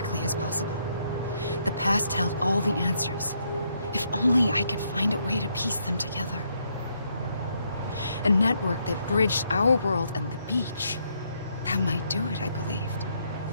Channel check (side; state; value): both; inverted; correlation -0.75